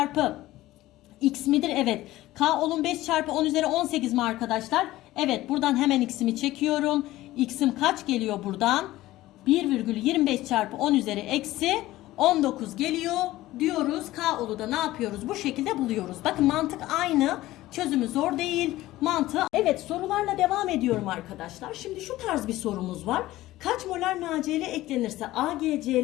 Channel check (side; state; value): right; quieter; 16.5 dB